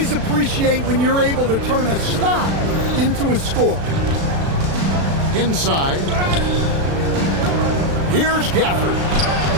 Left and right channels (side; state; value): left; late; 36 ms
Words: appreciate when you're able to turn a stop into a score. Inside. Here's Gafford.